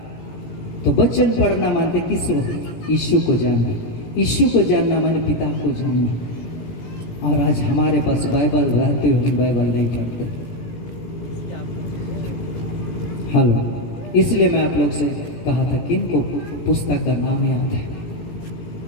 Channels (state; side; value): late; right; 17 ms